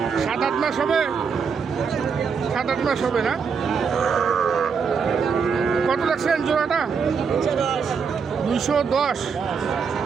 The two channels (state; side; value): quieter; left; 6.0 dB